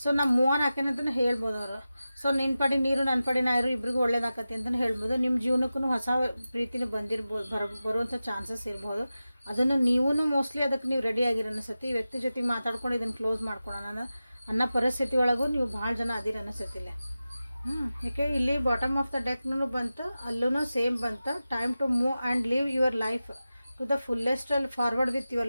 ಸೊ ನಾ ಮೂವ್ ಆನ್ ಹಾಕೇನಂತಲೇ ಹೇಳ್ಬೋದು ಅವರು. ಸೊ ನಿನ್ನ ಪಡಿ ನೀರು ನನ್ನ ಪಡಿ ನಾರು ಇಬ್ರಿಗೂ ಒಳ್ಳೇದಾಕತಿ ಅಂತಲೇ ಹೇಳ್ಬೋದು. ನಿಮ್ಮ ಜೀವನಕ್ಕೂ ಹೊಸ ಪ್ರೀತಿನ ಬಂದಿರ್ಬೋದು, ಬರುವಂಥ ಚಾನ್ಸಸ್ ಇರ್ಬೋದು. ಅದನ್ನು ನೀವೂ ಮೋಸ್ಟ್ಲಿ ಅದಕ್ಕೆ ನೀವು ರೆಡಿ ಆಗಿರ ಅನಿಸುತ್ತೆ. ಈ ವ್ಯಕ್ತಿ ಜೊತೆಗೆ ಮಾತಾಡ್ಕೊಂಡು ಇದನ್ನು ಕ್ಲೋಸ್ ಮಾಡ್ಕೊಳ್ಳೋಣ ಅನ್ನೋ ಪರಿಸ್ಥಿತಿ ಒಳಗೂ ನೀವು ಭಾಳ ಜನ ಅದಿರ ಅನಿಸುತ್ತಿಲ್ಲ. ಯಾಕೆ ಇಲ್ಲಿ ಬಾಟಮ್ ಆಫ್ ದ ಡೆಕ್ನೂ ಬಂತು, ಅಲ್ಲೂ ಸೇಮ್ ಬಂತು. Time to move and live your life to the fullest ಅಲ್ಲಿ ಫಾರ್ವರ್ಡ್ ವಿತ್ ಯುವರ್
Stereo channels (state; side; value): inverted; both; correlation -0.94